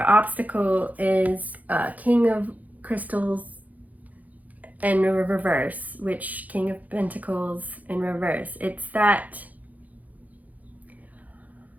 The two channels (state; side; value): late; left; 0.078 ms